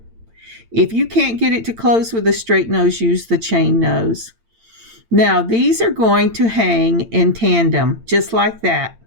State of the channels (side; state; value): left; late; 8.8 ms